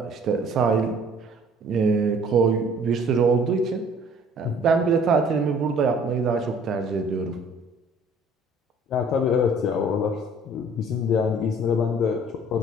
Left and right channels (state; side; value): normal; both; correlation 0.54